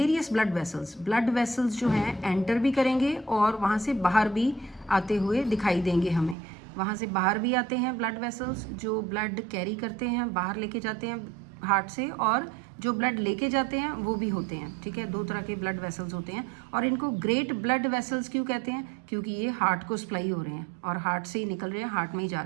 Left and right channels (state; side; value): drops out; left; at 6.4 s